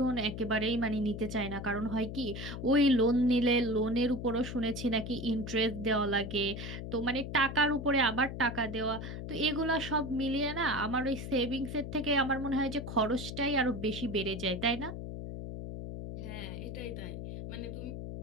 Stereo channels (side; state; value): left; noise; hum, 7 dB below the sound